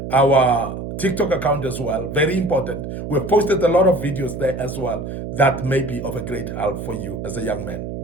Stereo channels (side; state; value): right; noise; hum, 7 dB below the sound